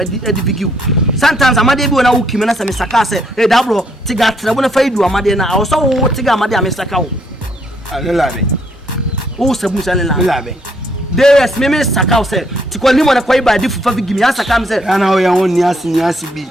bigi sometimes amade bi na uki me na se me saka se da bro tiga trebo na faidu amade na awo so wo tiga amade a me sakaw alelabe o sabu se alelabe DS me sakaw se tikoli mo na kwai ba di fufa bigi me asaka me se ana o ya won ni asi bi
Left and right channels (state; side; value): normal; both; correlation 0.71